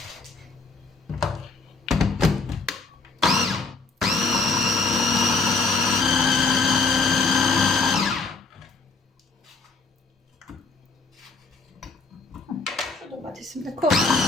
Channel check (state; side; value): quieter; right; 4.1 dB